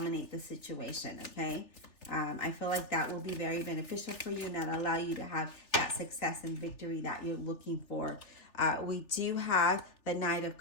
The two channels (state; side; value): late; right; 3.4 ms